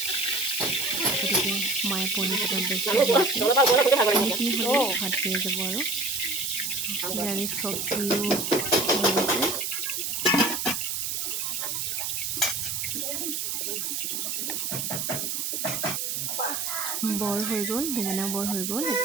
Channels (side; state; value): right; noise; hiss, 2 dB below the sound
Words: গতিকে মায়ে পনীৰ কেইটাত ব্যস্ত পনীৰখিনি হ'লে ভাত হৈ যাব আৰু নিৰামিষ চব্জিও হৈ গৈছে। বৰ হৈ গ'ল, বেঙেনা বৰ হৈ গ'ল।